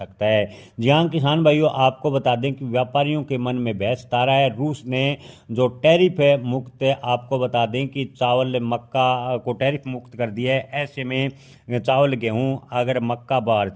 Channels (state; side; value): identical; both; correlation 1.00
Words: है। जी हाँ किसान भाइयों, आपको बता दें कि व्यापारियों के मन में बहस तारा है। रूस ने जो टैरिफ है मुक्त है, आपको बता दें कि चावल मक्का को टैरिफ मुक्त कर दिया है। ऐसे में चावल गेहूं अगर मक्का